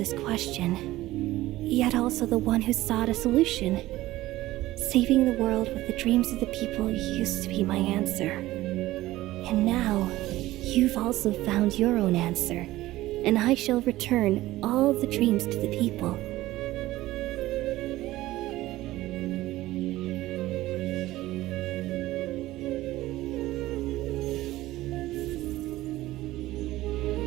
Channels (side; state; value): left; quieter; 16.7 dB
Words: question, yet also the one who sought a solution. Saving the world with the dreams of the people used to be my answer. And now, you've also found your own answer, and I shall return all the dreams to the people.